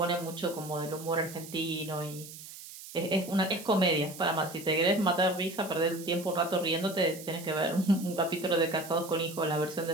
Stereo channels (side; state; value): right; noise; hiss, 14 dB below the sound